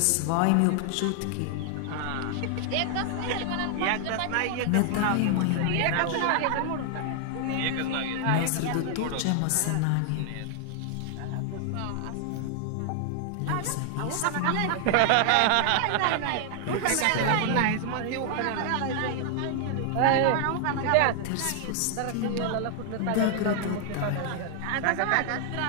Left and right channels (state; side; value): different; both; correlation 0.00